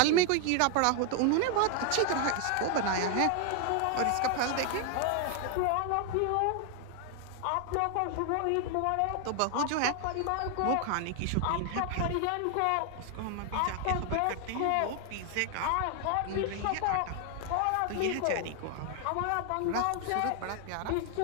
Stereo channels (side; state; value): both; different; correlation 0.00